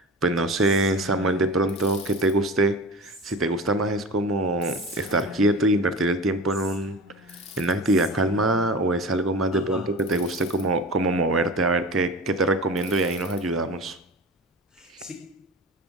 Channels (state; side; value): normal; both; correlation 0.33